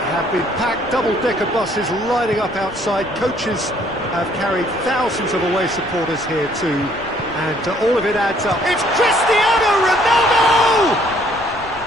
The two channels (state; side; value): noise; left; rumble, 20 dB below the sound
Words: been packed, double-decker buses lining up outside. Coaches have carried thousands of away supporters here too, and all of it adds up. It's Cristiano Ronaldo!